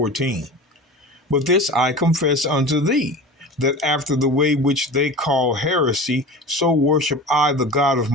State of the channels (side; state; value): both; normal; correlation 0.33